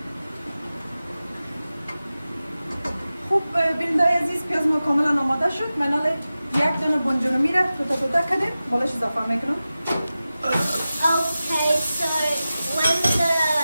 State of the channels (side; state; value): both; inverted; correlation -0.95